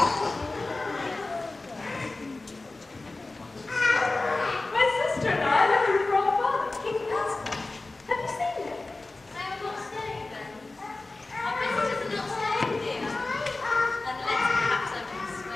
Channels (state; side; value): quieter; right; 3.2 dB